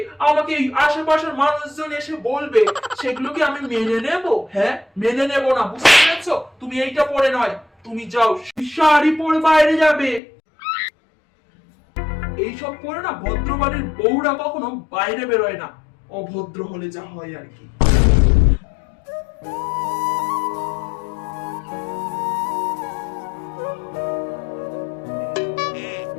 আমাকে এই আশেপাশের মানুষজন এসে বলবে, সেগুলো কি আমি মেনে নেব? হ্যাঁ, মেনে নেব না, বুঝতে পেরেছো? তুমি এইটা পরে নয়, তুমি যাও শাড়ি পরে বাইরে যাবে। এইসব পরে না ভদ্রবাড়ির বউরা কখনো বাইরে বেরোয় না, অভদ্র হলে যা হয় আর কি।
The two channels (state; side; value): drops out; right; at 10.2 s